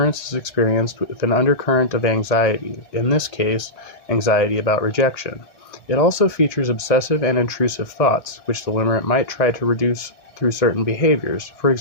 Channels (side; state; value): right; late; 1.8 ms